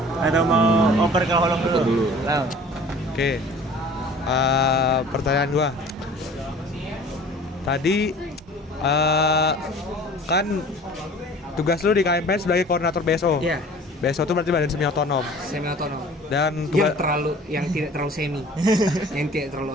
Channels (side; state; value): both; normal; correlation 0.46